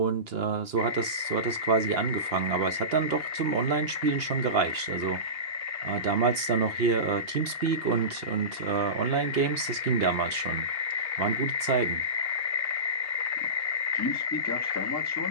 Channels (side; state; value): left; late; 2.8 ms